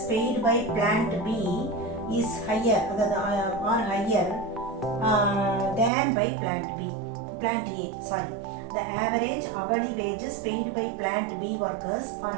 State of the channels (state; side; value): drops out; left; at 5.9 s